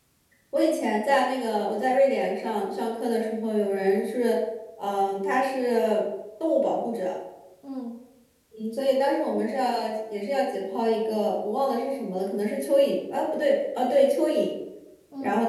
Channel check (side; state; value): both; identical; correlation 1.00